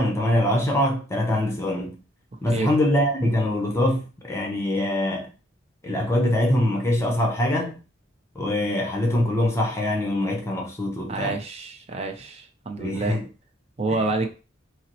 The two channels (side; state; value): both; normal; correlation 0.68